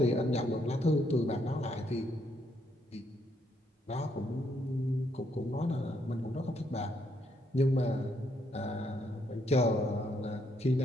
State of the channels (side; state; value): both; normal; correlation 0.74